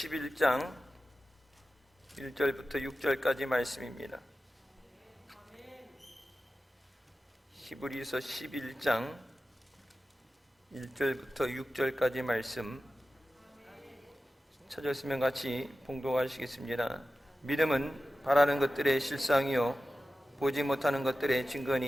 1절부터 6절까지 말씀입니다. 히브리서 11장 1절부터 6절까지 말씀 찾았으면 같이 봉독하시겠습니다. 믿음은 바라는 것들의 실상이요 보지 못하는 것들의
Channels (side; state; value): both; normal; correlation 0.94